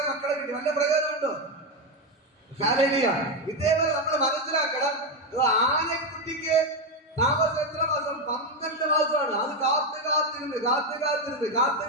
മക്കളെ കിട്ടി, വല്ല പ്രയോജനമുണ്ടോ? ഹല്ലേലൂയ. ഇതേപോലെ നമ്മൾ മനസ്സിലാക്കണം, ആനക്കുട്ടിക്ക് താമസം എത്ര മാസം? 12 മാസമാണ്. അത് കാത്തിരുന്ന്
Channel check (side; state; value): both; normal; correlation 0.08